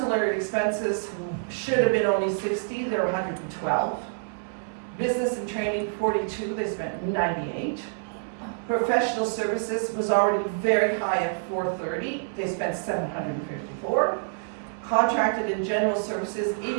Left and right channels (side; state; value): left; silent; digital silence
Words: expenses should have been only 60, they're 112. Business and training, 42, they spent 98. Professional services was already very high at 430, they spent 754. Contracted and general services,